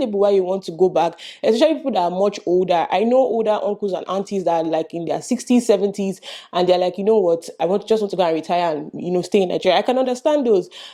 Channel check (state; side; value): identical; both; correlation 1.00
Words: why you want to go back, especially people that are much older. I know older uncles and aunties that are like in their 60s, 70s, and they're like, you know what, I just want to go and retire and, stay in Nigeria. I can understand those.